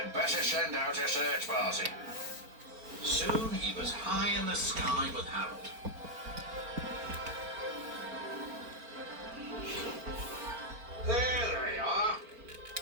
better send out a search party. Soon he was high in the sky with Harold. There they are.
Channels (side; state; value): left; late; 4.4 ms